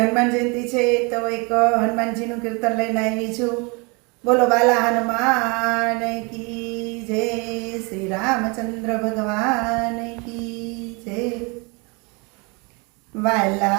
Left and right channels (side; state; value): left; quieter; 30.2 dB